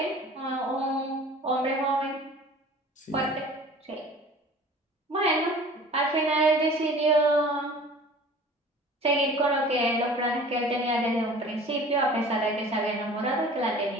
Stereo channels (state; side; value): normal; both; correlation 0.45